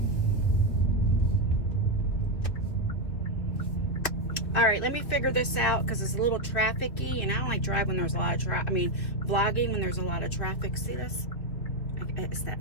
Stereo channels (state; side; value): late; right; 2.8 ms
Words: All right, let me figure this out because it's a little trafficy, and I don't like driving when there's a lot of traffic. I mean, vlogging when there's a lot of traffic. See this? It's